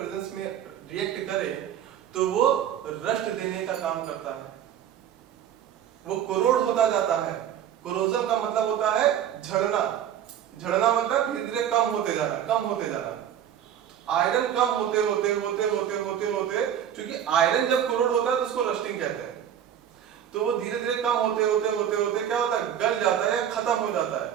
में रिएक्ट करे तो वो रस्ट देने का काम करता है, वो कोरोड होता जाता है। कोरोजन का मतलब होता है झड़ना, झड़ना मतलब धीरे धीरे कम होते जाना, कम होते जाना। आयरन कम होते होते होते होते होते होते क्योंकि आयरन जब कोरोड होता है तो उसको रस्टिंग कहते हैं, तो वो धीरे धीरे कम होते होते होते होते क्या होता है? गल जाता है, खत्म हो जाता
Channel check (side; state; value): left; quieter; 9.8 dB